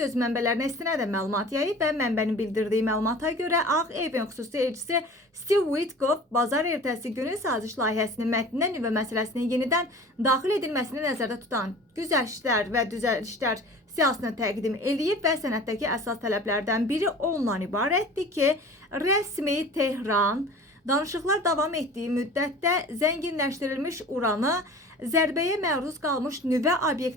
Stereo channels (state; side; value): normal; both; correlation 0.41